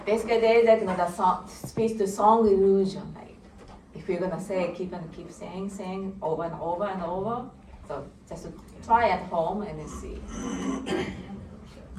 basically, there is the speech to song illusion. Like if you're gonna keep saying over and over and over. So just try at home and then see.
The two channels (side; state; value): both; identical; correlation 1.00